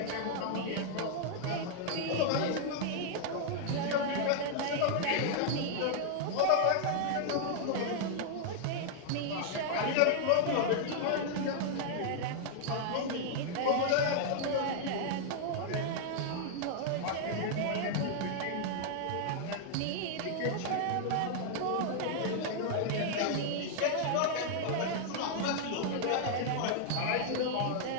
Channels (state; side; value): different; both; correlation -0.01